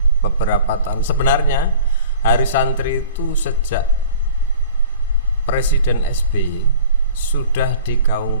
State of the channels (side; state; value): both; inverted; correlation -0.44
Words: beberapa tahun sebenarnya Hari Santri itu sejak Presiden SBY sudah